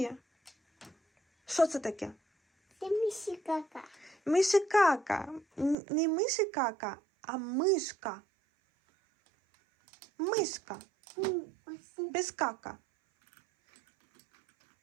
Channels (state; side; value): drops out; left; at 5.8 s